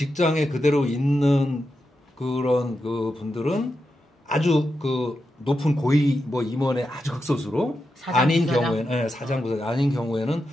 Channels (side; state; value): both; normal; correlation 0.87